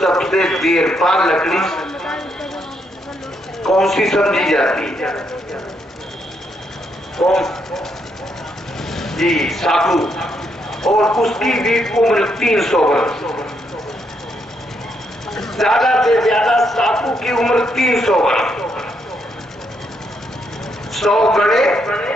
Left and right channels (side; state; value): both; normal; correlation 0.76